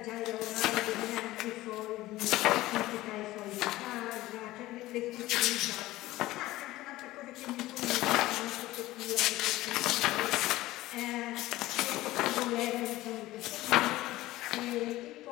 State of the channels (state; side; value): quieter; right; 17.2 dB